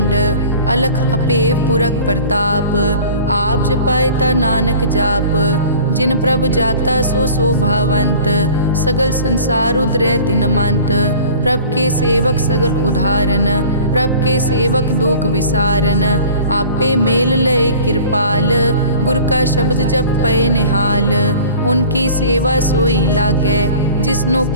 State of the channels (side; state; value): both; inverted; correlation -0.44